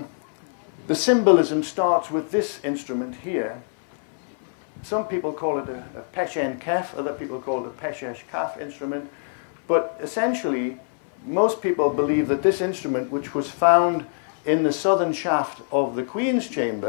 The symbolism starts with this instrument here. Some people call it a peshen kef, other people call it a peshesh kaf instrument. But essentially, most people believe that this instrument, which was found in the southern shaft of the Queen's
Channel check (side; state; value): right; silent; 62 dB below the other